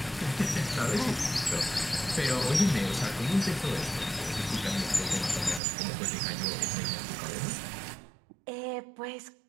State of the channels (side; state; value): left; drops out; at 5.6 s